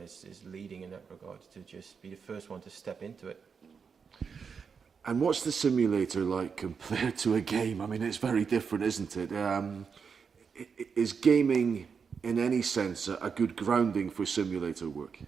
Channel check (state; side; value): quieter; left; 6.0 dB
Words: is leading in that regard to just be the first one to step into it. And what's the simulator like compared to a game? I mean, it's very different, isn't it? Is gaming, in any sense, a good grounding for simulator work?